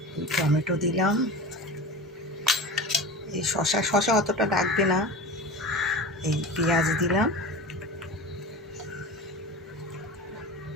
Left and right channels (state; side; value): normal; both; correlation 0.32